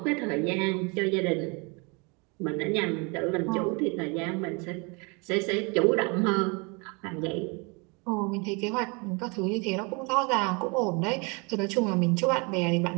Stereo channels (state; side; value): quieter; left; 30.6 dB